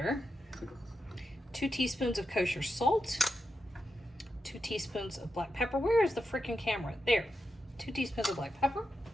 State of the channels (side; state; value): both; normal; correlation 0.87